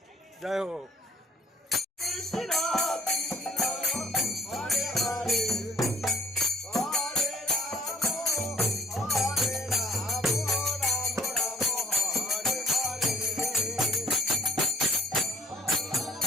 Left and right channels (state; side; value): normal; both; correlation 0.59